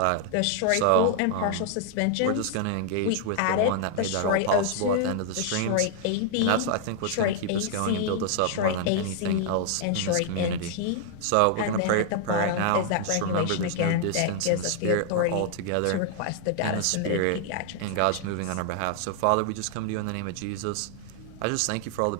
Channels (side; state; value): both; different; correlation -0.01